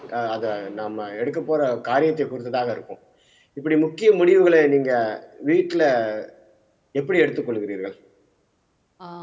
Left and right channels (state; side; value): identical; both; correlation 1.00